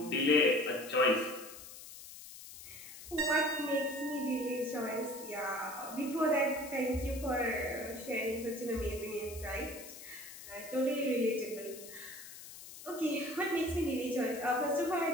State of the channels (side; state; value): left; noise; hiss, 14 dB below the sound